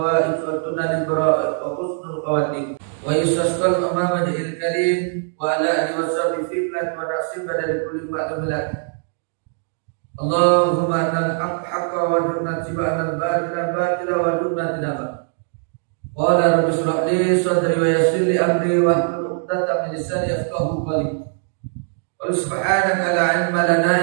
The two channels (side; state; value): left; silent; 65 dB below the other